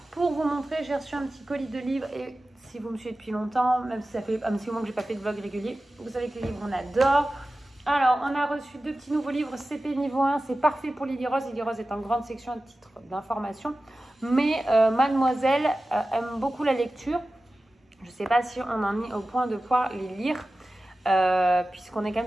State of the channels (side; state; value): both; normal; correlation 0.95